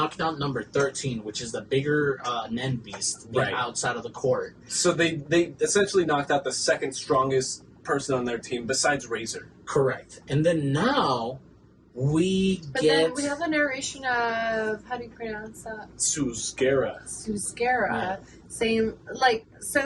out number 13, which is the bigger Nen beast outside of the court. So they essentially knocked out the second strongest person on their team besides Razor. Correct. And then now then we have a narration of, how do you pronounce that? Susgera. Saying, like,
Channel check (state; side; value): identical; both; correlation 1.00